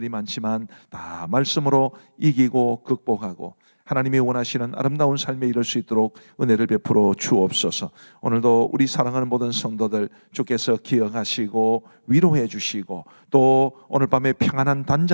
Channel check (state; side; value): inverted; both; correlation -1.00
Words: 많지만 다 말씀으로 이기고 극복하고 하나님이 원하시는 아름다운 삶에 이룰 수 있도록 은혜를 베풀어 주옵소서. 오늘도 우리 사랑하는 모든 성도들 주께서 기억하시고 위로해 주시고 또 오늘 밤에 평안한